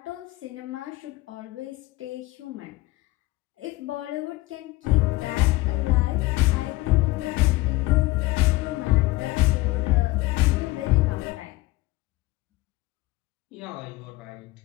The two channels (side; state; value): right; quieter; 20.2 dB